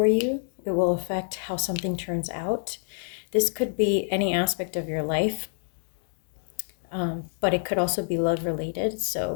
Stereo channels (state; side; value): silent; right; digital silence